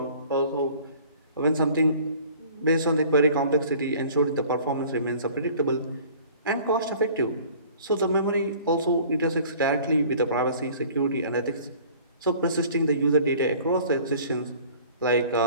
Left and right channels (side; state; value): both; inverted; correlation -0.49